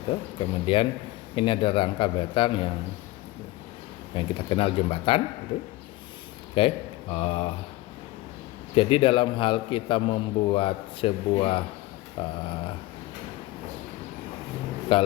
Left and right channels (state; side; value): quieter; right; 18.4 dB